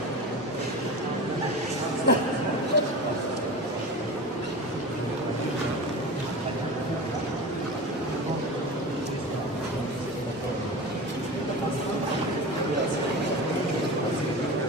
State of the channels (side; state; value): both; normal; correlation 0.30